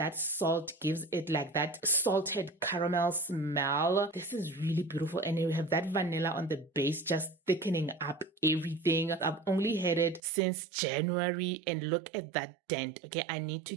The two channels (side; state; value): left; drops out; at 10.2 s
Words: salt gives it like that salted caramel smell. This is really beautiful, and you have that vanilla on the base just thickening up everything. I've only had it since January and look at that dent. Okay, I need to